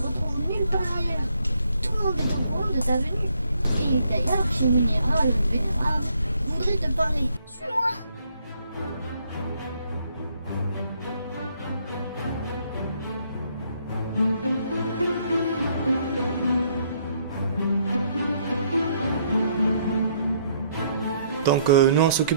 nulle part ailleurs. Tout le monde est au courant de ta venue. Et d'ailleurs, chez Munira, le vénérable, voudrait te parler. Suis-moi! Donc nous on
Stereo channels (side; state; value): both; inverted; correlation -0.70